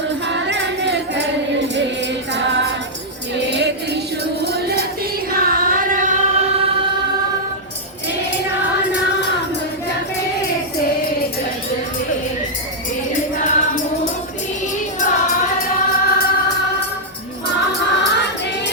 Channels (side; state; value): both; normal; correlation -0.06